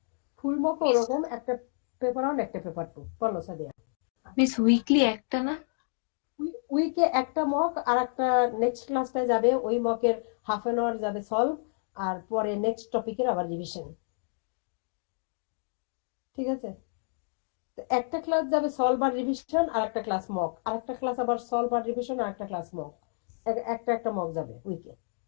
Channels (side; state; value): right; silent; digital silence